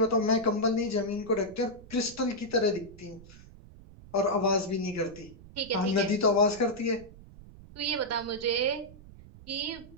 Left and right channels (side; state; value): right; noise; rumble, 19 dB below the sound